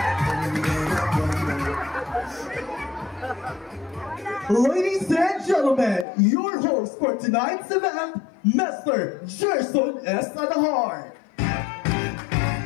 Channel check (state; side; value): drops out; right; at 6.1 s